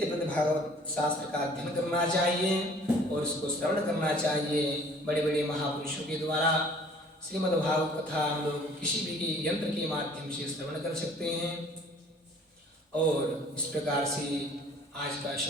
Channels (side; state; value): both; normal; correlation 0.53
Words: भागवत शास्त्र का अध्ययन करना चाहिए और इसको श्रवण करना चाहिए। बड़े बड़े महापुरुषों के द्वारा श्रीमद्भागवत कथा हम लोग किसी भी यंत्र के माध्यम से श्रवण कर सकते हैं। और इस प्रकार से आज का